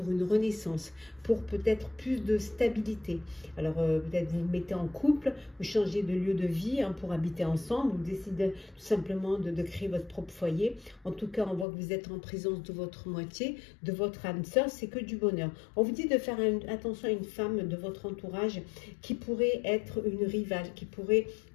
une renaissance, pour peut-être plus de stabilité. Alors, peut-être vous vous mettez en couple, vous changez de lieu de vie, hein, pour habiter ensemble, vous décidez tout simplement de créer votre propre foyer. En tout cas, on voit que vous êtes en présence de votre moitié, de votre âme sœur, c'est que du bonheur. On vous dit de faire attention à une femme de votre entourage qui pourrait être une rivale, qui pourrait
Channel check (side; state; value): right; drops out; at 11.7 s